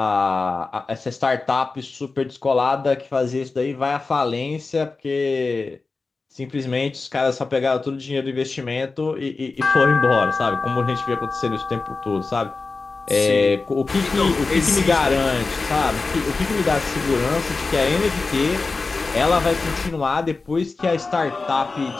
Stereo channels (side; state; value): right; quieter; 3.9 dB